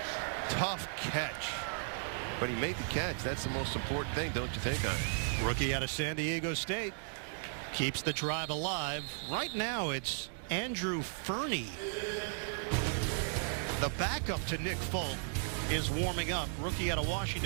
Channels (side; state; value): left; silent; 54 dB below the other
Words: Tough catch. But he made the catch. That's the most important thing, don't you think, Ian? Rookie out of San Diego State. Keeps the drive alive. Right now, it's Andrew Fernie. The backup to Nick Folk is warming up. Rookie out of